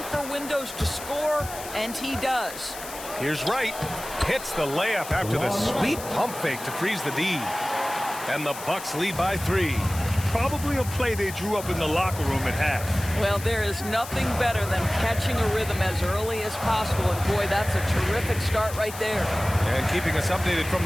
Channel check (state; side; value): noise; left; hiss, 12 dB below the sound